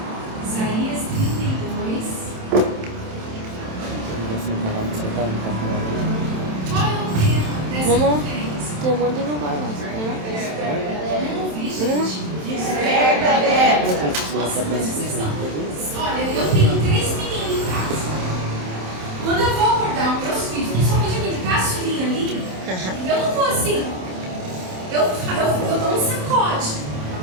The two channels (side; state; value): left; late; 27 ms